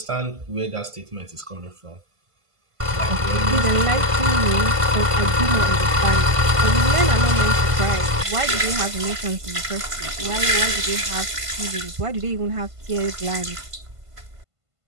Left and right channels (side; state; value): left; late; 1.5 ms